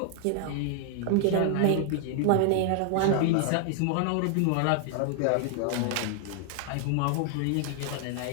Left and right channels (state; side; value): different; both; correlation 0.00